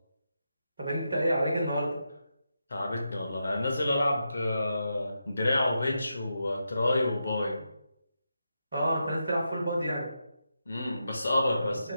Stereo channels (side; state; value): both; inverted; correlation -0.86